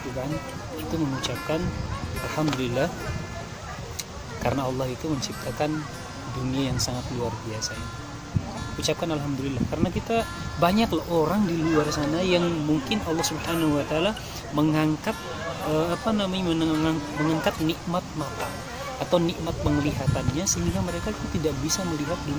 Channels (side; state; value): both; identical; correlation 1.00